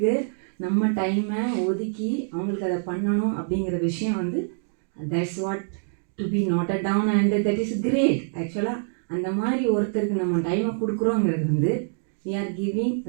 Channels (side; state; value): left; silent; digital silence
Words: நம்ம டைமை ஒதுக்கி அவங்களுக்கு அதை பண்ணணும் அப்படிங்கிற விஷயம் வந்து that's what to be noted down and that is great. ஆக்சுவலாக அந்த மாதிரி ஒருத்தருக்கு நம்ம டைமை கொடுக்குறோங்கிறது வந்து we are giving